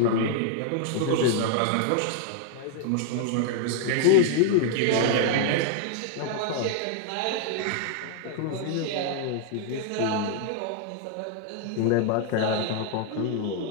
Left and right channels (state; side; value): different; both; correlation 0.00